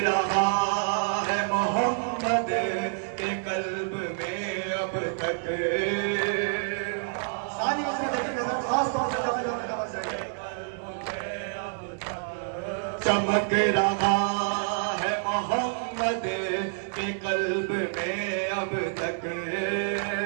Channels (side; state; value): left; silent; 55 dB below the other